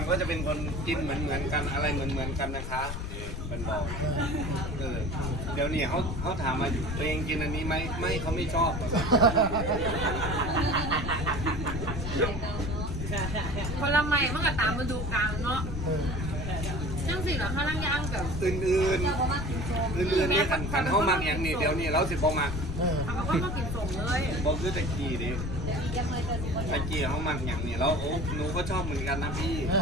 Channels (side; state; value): left; noise; rumble, 6 dB below the sound